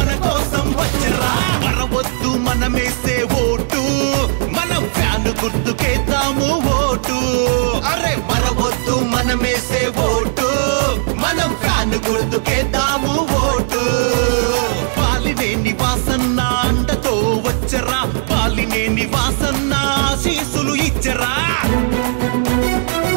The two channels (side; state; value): left; silent; digital silence